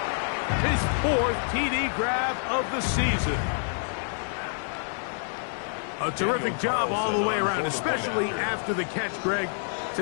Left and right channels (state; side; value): silent; right; 60 dB below the other